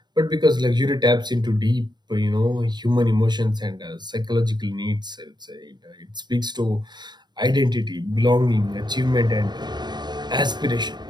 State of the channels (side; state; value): left; late; 0.21 ms